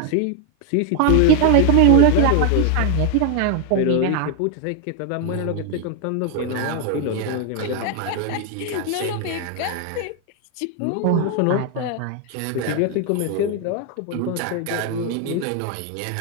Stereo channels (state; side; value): different; both; correlation 0.01